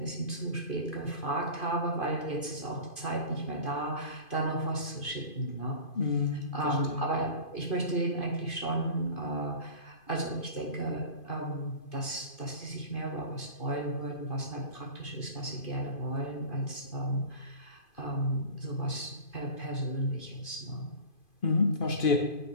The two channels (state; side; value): late; right; 2.5 ms